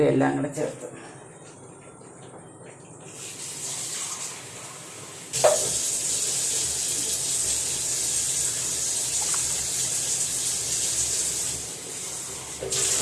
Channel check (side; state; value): both; identical; correlation 1.00